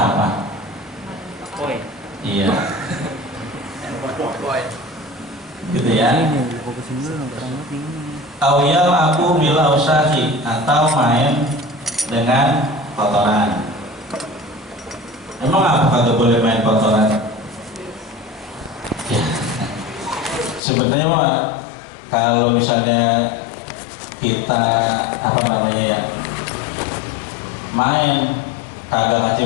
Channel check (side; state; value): right; drops out; at 20.6 s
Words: Iya. Gitu ya. Awyal aku bila usahi, atau main dengan kotoran. Emang apa kagak boleh main kotoran? Ya. Sebenarnya mah kalau misalnya kita main kagak